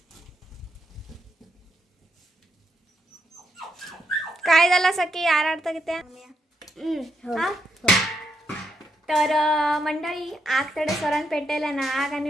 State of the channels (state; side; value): normal; both; correlation 0.80